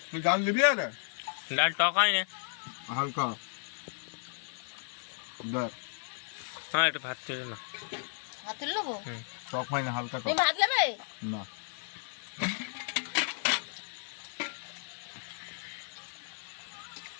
তুই ডাল দিবি আরে? ডাল টক হয় না। হালকা দেখ, হ্যাঁ একটু ভাত তুলে না। ভাত তুলে নেবো? টক হয় না, হালকা তুমি টক। ভাত নেবে? না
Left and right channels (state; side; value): silent; right; 55 dB below the other